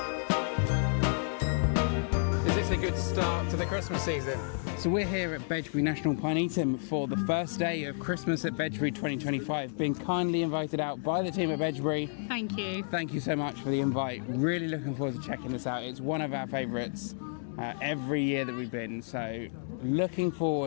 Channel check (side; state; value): right; silent; digital silence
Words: Is this a good start to the Christmas season? So we're here at Bedgebury National Pinetum for the first day of Christmas at Bedgebury 2025, being kindly invited out by the team at Bedgebury. Thank you. Thank you so much for the invite. Really looking forward to checking this out. It's one of our favourites every year that we've been, so looking